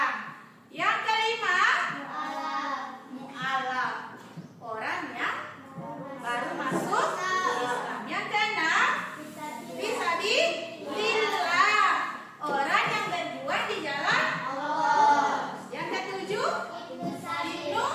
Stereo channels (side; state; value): both; identical; correlation 1.00